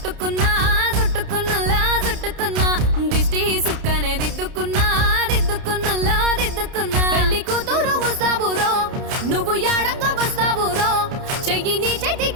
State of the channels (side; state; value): left; late; 30 ms